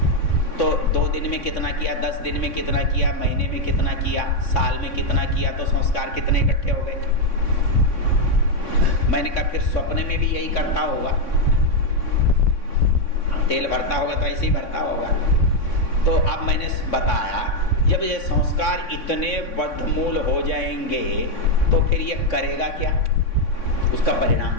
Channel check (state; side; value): late; right; 3.6 ms